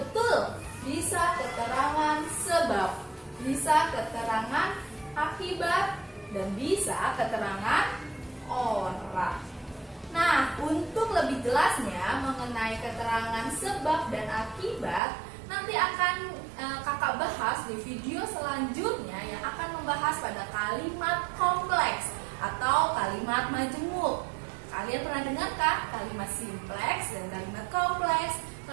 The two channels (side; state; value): left; drops out; at 15.0 s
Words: Bisa keterangan sebab, bisa keterangan akibat, dan bisa keterangan orang. Nah, untuk lebih jelasnya mengenai keterangan sebab dan akibat, nanti akan kakak bahas di video selanjutnya yang akan membahas pada kalimat kompleks atau kalimat majemuk. Kalian pernah dengar kan kalimat simpleks dan kalimat kompleks?